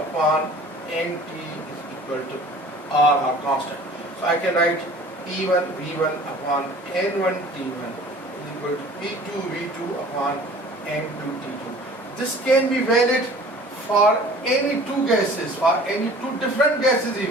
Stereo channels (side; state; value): both; normal; correlation 0.47